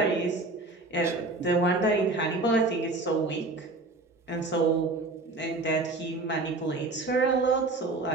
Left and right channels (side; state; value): left; quieter; 3.2 dB